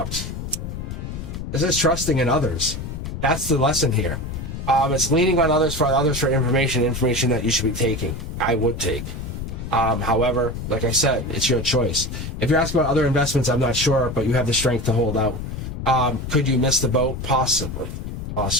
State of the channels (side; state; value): left; noise; rumble, 7 dB below the sound